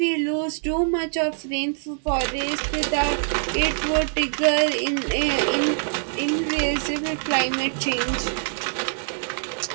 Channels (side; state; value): left; silent; 63 dB below the other